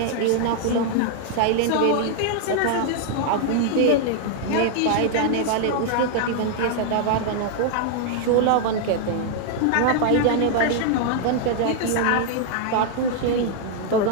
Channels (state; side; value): different; both; correlation 0.00